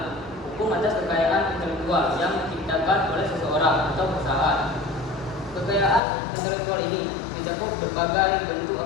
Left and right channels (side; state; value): right; drops out; at 6.0 s